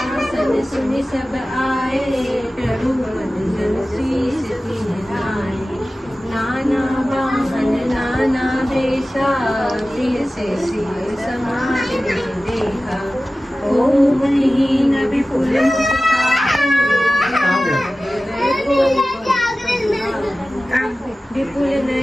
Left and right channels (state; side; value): normal; both; correlation 0.96